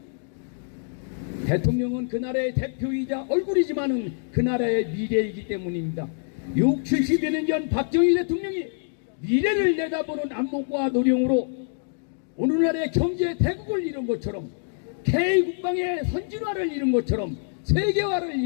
대통령은 그 나라의 대표이자 얼굴이지만은 그 나라의 미래이기 때문입니다. 70여 년 전 박정희 대통령이 미래를 내다보는 안목과 노령으로 오늘날의 경제 대국을 이룬 것처럼, K국방의 선진화를 이룬 것처럼, 세계화를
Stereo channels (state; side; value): silent; right; digital silence